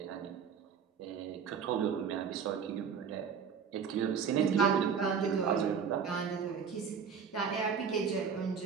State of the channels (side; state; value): left; quieter; 6.7 dB